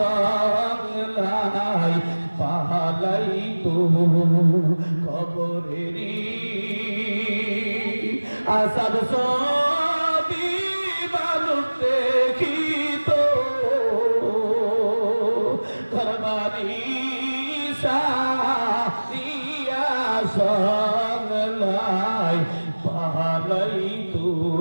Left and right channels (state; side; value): inverted; both; correlation -1.00